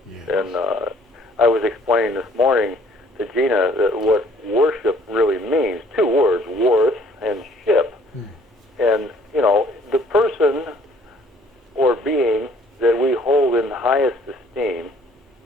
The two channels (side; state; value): both; normal; correlation 0.59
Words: Yes. And I was explaining this morning to Gina that what worship really means. Two words, worth and ship. And, you know, the person or being that we hold in the highest esteem